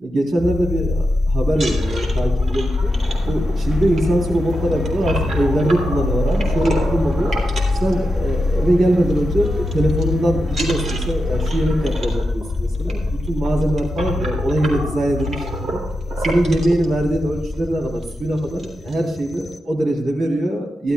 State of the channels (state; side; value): normal; both; correlation 0.88